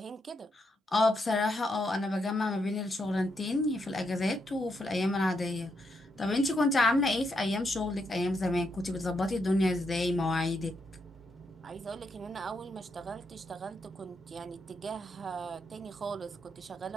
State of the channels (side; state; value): both; normal; correlation 0.80